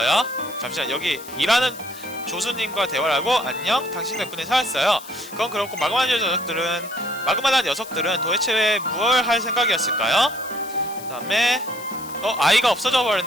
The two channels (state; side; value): noise; left; hiss, 16 dB below the sound